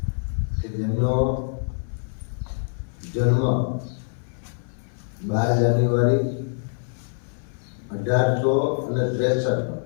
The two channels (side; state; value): right; silent; 60 dB below the other